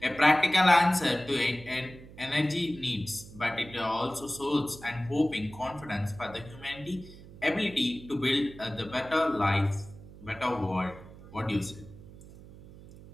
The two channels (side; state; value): right; noise; hum, 18 dB below the sound